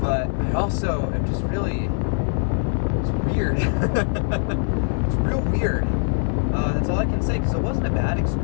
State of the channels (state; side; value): silent; right; digital silence